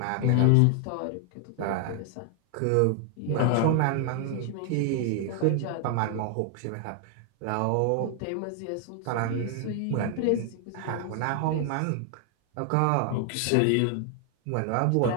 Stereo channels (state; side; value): different; both; correlation 0.00